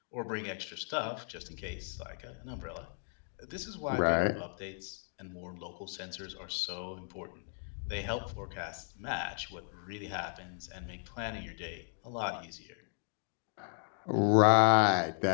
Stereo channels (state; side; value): silent; right; 54 dB below the other